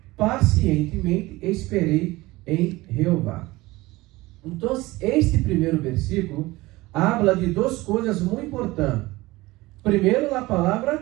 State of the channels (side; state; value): left; quieter; 20.1 dB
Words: pacientemente esperei em Jeová. Então, este primeiro versículo habla de duas coisas muito importantes. Primeiro, a